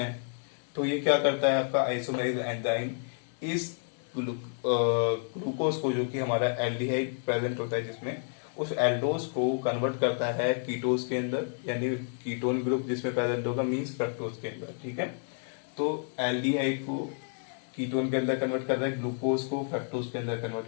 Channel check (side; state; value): right; silent; 58 dB below the other